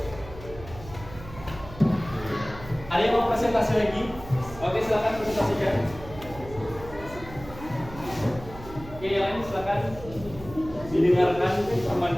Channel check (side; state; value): right; noise; hum, 15 dB below the sound